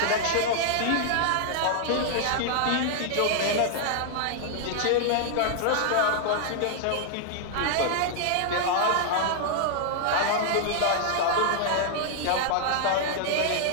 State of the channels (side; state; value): both; different; correlation -0.01